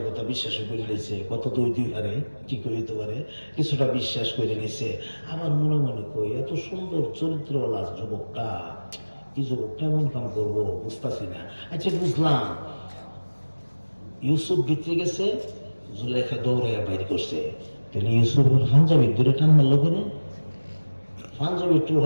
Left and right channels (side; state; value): both; inverted; correlation -1.00